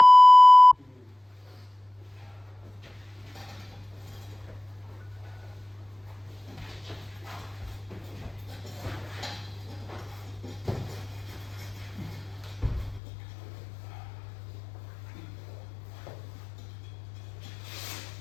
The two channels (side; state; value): right; drops out; at 13.0 s